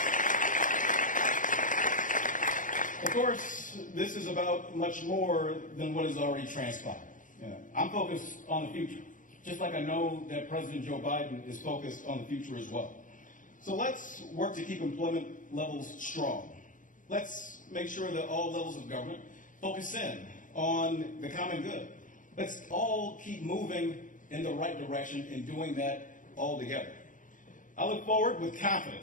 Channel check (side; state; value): right; late; 0.38 ms